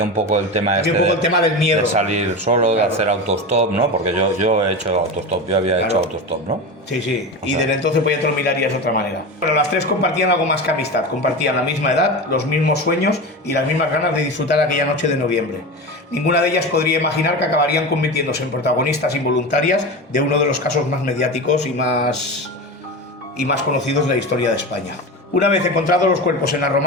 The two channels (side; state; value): both; normal; correlation 0.25